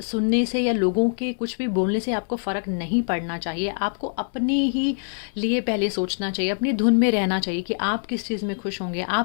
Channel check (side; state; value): right; silent; 62 dB below the other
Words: सुनने से या लोगों के कुछ भी बोलने से आपको फ़र्क नहीं पड़ना चाहिए। आपको अपने ही लिए पहले सोचना चाहिए, अपनी धुन में रहना चाहिए कि आप किस चीज़ में खुश होंगे,